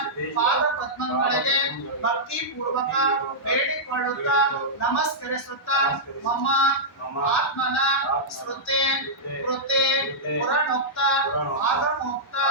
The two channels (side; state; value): both; normal; correlation -0.11